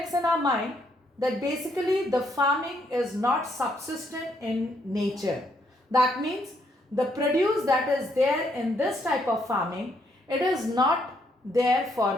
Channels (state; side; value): normal; both; correlation 0.73